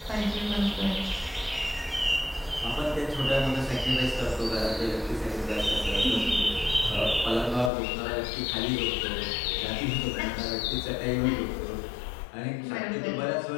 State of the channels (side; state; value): right; drops out; at 7.7 s